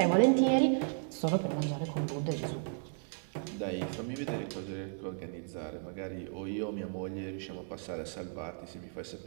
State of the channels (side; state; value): left; silent; 55 dB below the other